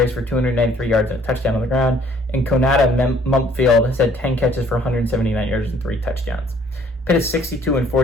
for 293 yards and a touchdown on the ground. And Konata Mumpfield has had 10 catches for 179 yards and 3 touchdowns. Pitt is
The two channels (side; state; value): both; normal; correlation 0.59